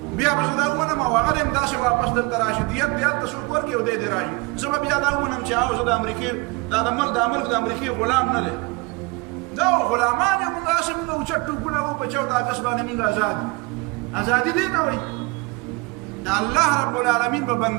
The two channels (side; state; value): left; quieter; 26.7 dB